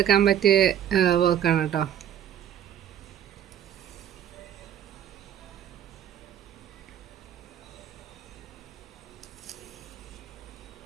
പറ്റിയ വർക്കാണ് കേട്ടോ.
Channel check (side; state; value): left; quieter; 10.2 dB